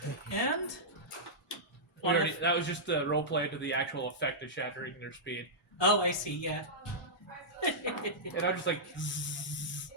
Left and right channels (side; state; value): both; normal; correlation -0.12